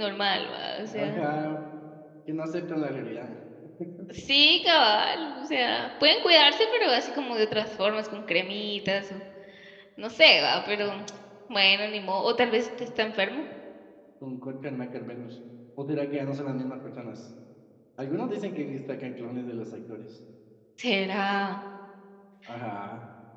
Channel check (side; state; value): both; identical; correlation 1.00